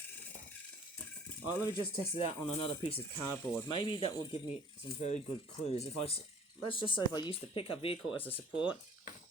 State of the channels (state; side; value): normal; both; correlation 0.52